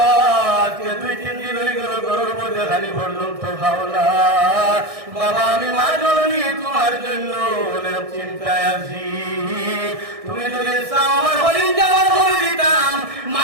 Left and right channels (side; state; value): left; late; 1.6 ms